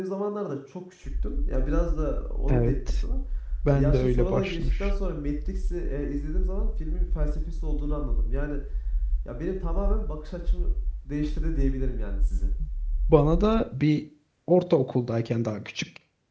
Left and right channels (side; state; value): both; identical; correlation 1.00